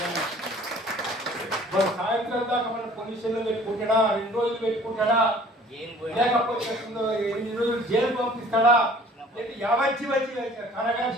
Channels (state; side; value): normal; both; correlation 0.52